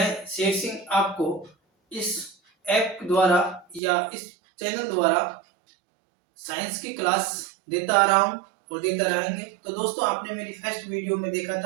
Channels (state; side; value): drops out; left; at 3.8 s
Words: शेर सिंह आपको इस ऐप द्वारा या इस चैनल द्वारा साइंस की क्लास देता आ रहा हूँ और देता रहेंगे। तो दोस्तों, आपने मेरी फर्स्ट वीडियो में देखा